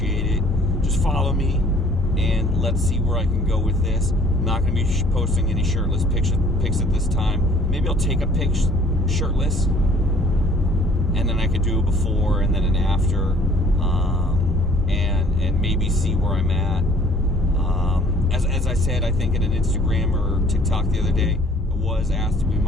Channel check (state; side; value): normal; both; correlation 0.56